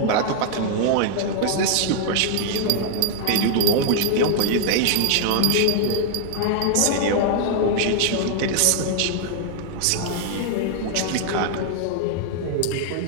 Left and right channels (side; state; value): both; different; correlation 0.00